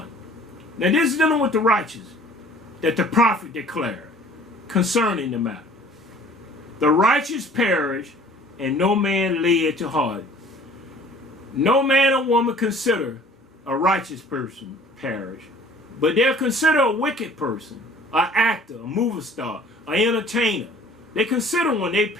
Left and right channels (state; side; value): normal; both; correlation 0.51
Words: Now this is dealing with the righteous that the prophet declared concerning the matter. The righteous perish, and no man lay it to heart. No man or woman consider a righteous person perish, but they'll consider a wicked person, an actor, a movie star, an entertainer. They consider when they